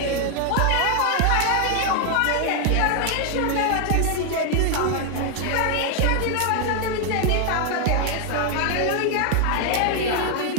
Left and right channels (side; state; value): both; different; correlation 0.00